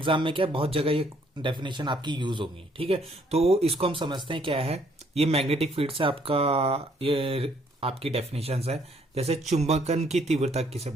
में क्या बहुत जगह ये डेफिनेशन आपकी यूज होगी, ठीक है। तो इसको हम समझते हैं क्या है। ये मैग्नेटिक फील्ड से आपका ये आपकी डेफिनेशन है। जैसे चुंबकन की तीव्रता किसे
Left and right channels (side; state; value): both; normal; correlation 0.66